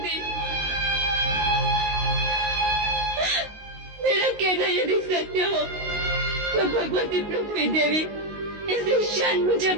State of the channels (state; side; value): late; left; 19 ms